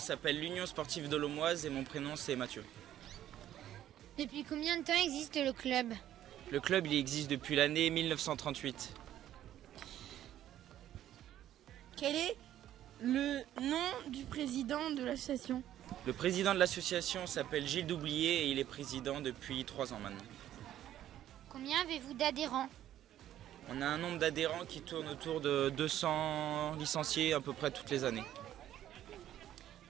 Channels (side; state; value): left; quieter; 12.0 dB